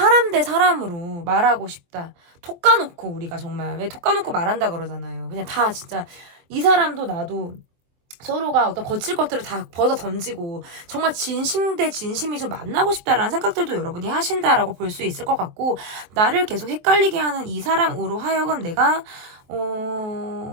대 사람으로 말하고 싶다. 톡 까놓고 우리가 정말 왜 톡 까놓고 말한다 그러잖아요. 그냥 다 진짜 이 사람도 나도 서로가 어떤 거칠 것들을 다 벗어 던지고 정말 진심 대 진심이 좀 만나고 싶다라는 생각들도 여러분이 하신다라고 볼 수 있을 것 같고 나를 계속 헷갈리게 하는 이 사람으로 하여금 내가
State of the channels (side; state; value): left; late; 23 ms